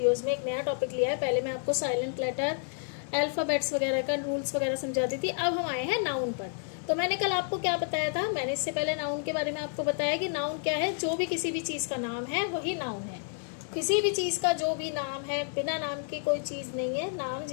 में एक नया टॉपिक लिया है। पहले मैं आपको साइलेंट लेटर, अल्फ़ाबेट्स वगैरह का रूल्स वगैरह समझाती थी। अब हम आए हैं नाउन पर। तो मैंने कल आपको क्या बताया था, मैंने इससे पहले नाउन के बारे में आपको बताया कि नाउन क्या है। जो भी किसी भी चीज़ का नाम है वही नाउन है। किसी भी चीज़ का जो भी नाम है, बिना नाम की कोई चीज़ नहीं है। नाम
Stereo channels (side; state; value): right; silent; 58 dB below the other